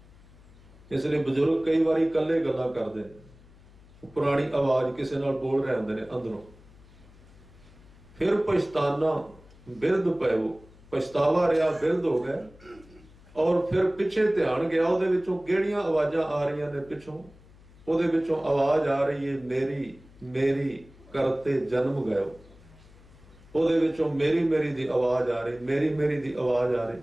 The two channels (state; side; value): noise; left; hum, 24 dB below the sound